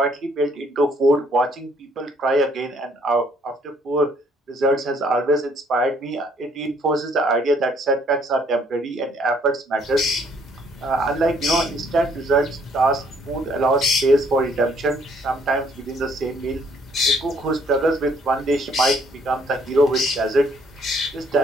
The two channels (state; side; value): normal; both; correlation 0.65